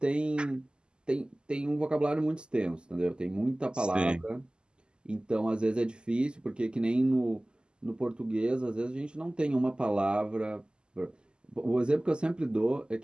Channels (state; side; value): late; left; 0.048 ms